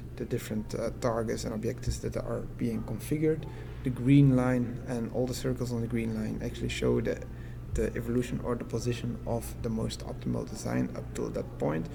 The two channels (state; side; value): identical; both; correlation 1.00